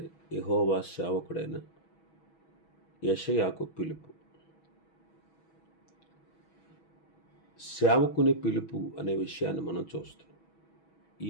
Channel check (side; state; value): right; late; 6.2 ms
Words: యెహోవా సేవకుడైన యెషయాకు పిలుపు. సేవకుని పిలుపు అనే విషయాన్ని మనం చూస్తున్నాం. ఈ